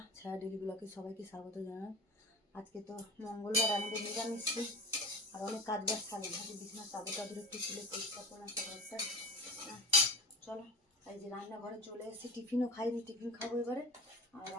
ছায়া daily ব্লগে সবাইকে স্বাগত জানাই। আজকে তো মঙ্গলবার, আমাদের নিরামিষ দিন। আর অনেক কাজ বাজ থাকে, ভাবি বিছানার চাদর টাদর একটু তুলে পরিষ্কার করলাম ঘরটা। চলো, এই যে রান্নাঘরে চলে এসেছি। টিফিনও খাইনি, টিফিন খাবো এবারে। আর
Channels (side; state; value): both; normal; correlation 0.32